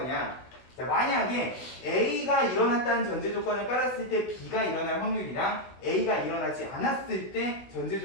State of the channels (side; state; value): right; late; 16 ms